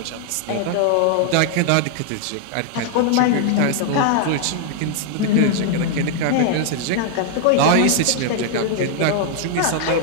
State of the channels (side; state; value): both; different; correlation 0.00